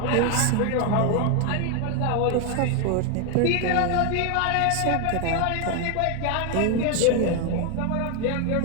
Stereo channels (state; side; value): different; both; correlation 0.01